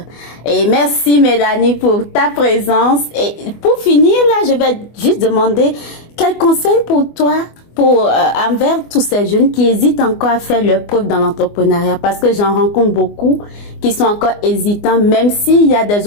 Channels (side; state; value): right; late; 24 ms